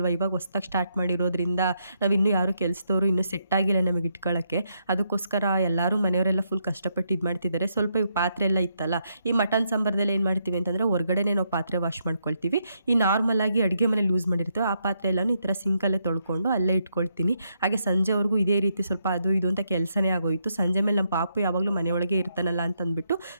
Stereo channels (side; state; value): both; inverted; correlation -0.78